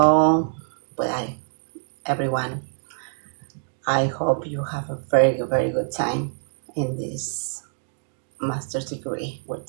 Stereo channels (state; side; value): silent; left; digital silence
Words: well, everyone, I hope you have a very, very good time in this master's degree we're